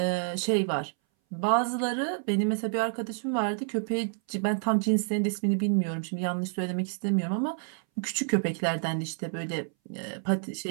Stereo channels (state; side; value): silent; left; 59 dB below the other